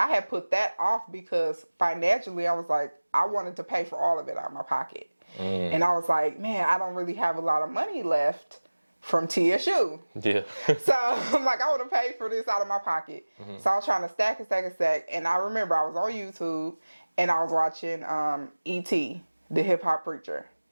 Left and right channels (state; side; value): inverted; both; correlation -1.00